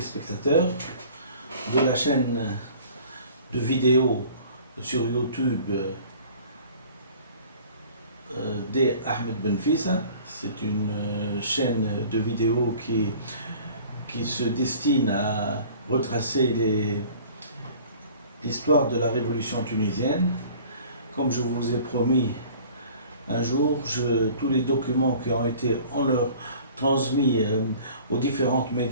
de la chaîne de vidéos sur YouTube des Ahmed Benfissa. C'est une chaîne de vidéos qui se destine à retracer l'histoire de la révolution tunisienne. Comme je vous ai promis un jour, tous les documents qui ont été transmis aux différents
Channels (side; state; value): both; inverted; correlation -0.48